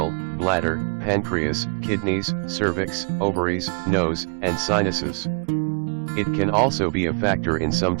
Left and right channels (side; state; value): left; quieter; 39.6 dB